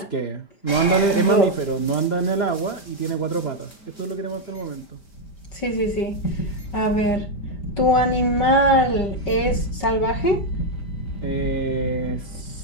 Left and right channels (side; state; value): right; late; 5.0 ms